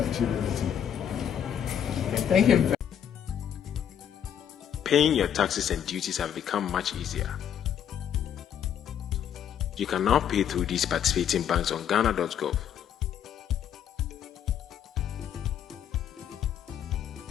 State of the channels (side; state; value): right; quieter; 9.2 dB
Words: anything. Thank you. Paying your taxes and duties have become much easier. You can now pay through these participating banks on ghana.gov.